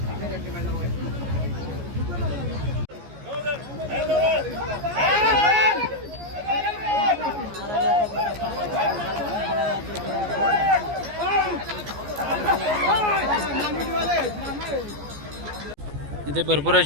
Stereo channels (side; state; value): left; late; 14 ms